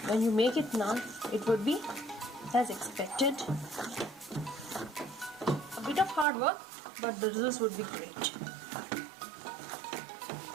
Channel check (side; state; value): left; drops out; at 6.2 s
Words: when you make it naan, it would be as expected. A bit of hard work, but the results would be great.